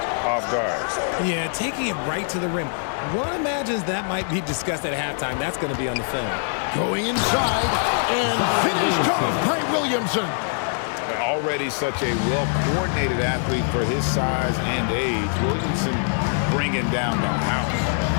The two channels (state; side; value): silent; right; digital silence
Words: off guard. Yeah, taking it right to the rim. One imagines that might be discussed at halftime. That's going to be on the film. Going inside and finished off by Williamson. Already such a well-coordinated athlete for his size and age. Williamson bringing down the house.